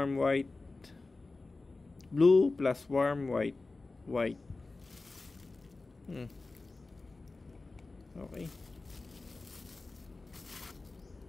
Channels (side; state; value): right; quieter; 3.5 dB